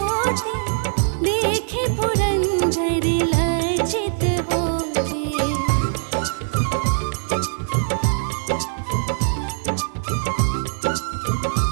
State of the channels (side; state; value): left; silent; digital silence